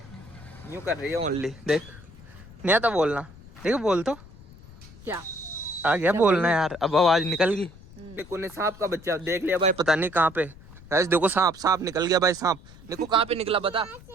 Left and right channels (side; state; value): left; noise; rumble, 20 dB below the sound